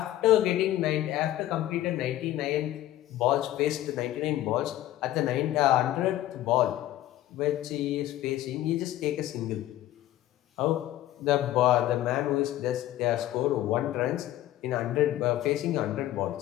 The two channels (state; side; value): quieter; right; 13.9 dB